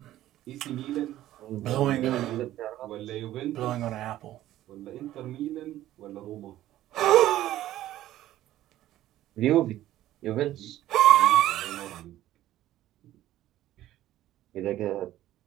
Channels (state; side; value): quieter; left; 14.0 dB